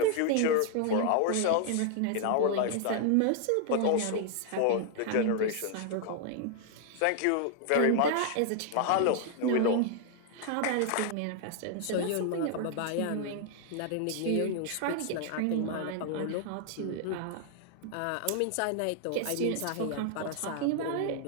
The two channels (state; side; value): different; both; correlation 0.00